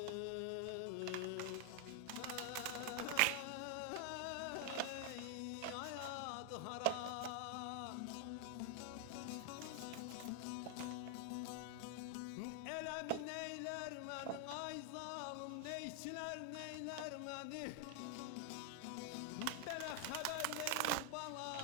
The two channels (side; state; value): both; different; correlation 0.00